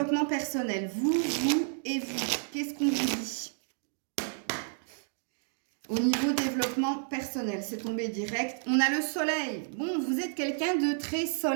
personnel, vous et vous, qu'est-ce qu'on vous dit? Au niveau développement personnel, c'est tombé direct. On a le soleil. Bon, vous êtes quelqu'un de très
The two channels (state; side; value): silent; left; digital silence